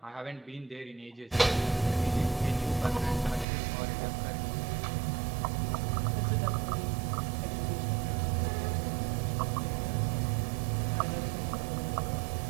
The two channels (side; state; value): left; drops out; at 3.5 s